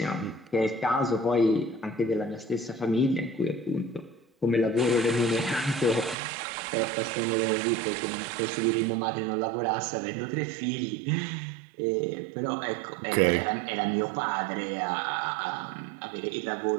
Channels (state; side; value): drops out; left; at 6.2 s